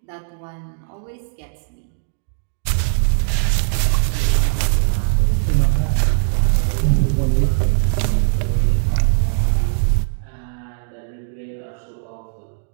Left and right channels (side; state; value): left; silent; digital silence